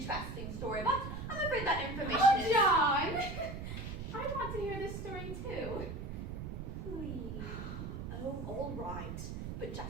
story, but I'm afraid that information Oh, is... John! I want to hear this story too. Please. Oh, all right. But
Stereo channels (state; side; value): noise; right; rumble, 6 dB below the sound